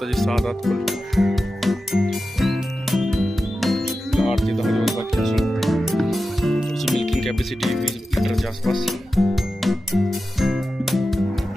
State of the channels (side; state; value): both; normal; correlation 0.92